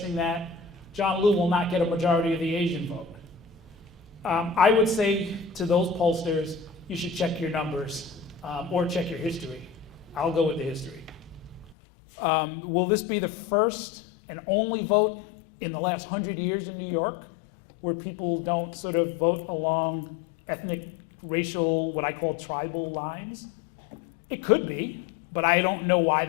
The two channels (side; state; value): right; drops out; at 11.8 s